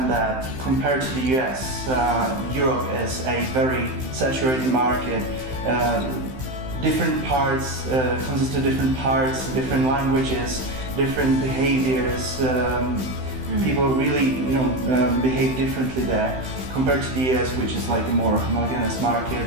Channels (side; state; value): left; late; 15 ms